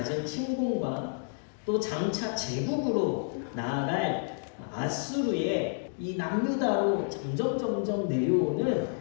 침공과 또 장차 제국으로 나아갈 아수르의 이 남유다로 점점 내려오는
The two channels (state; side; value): silent; right; digital silence